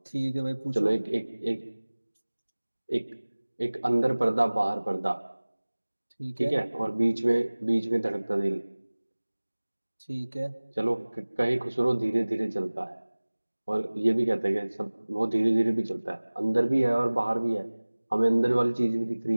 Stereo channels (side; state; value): both; inverted; correlation -1.00